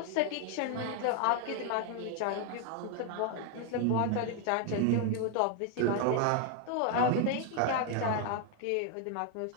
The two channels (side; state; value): both; different; correlation 0.00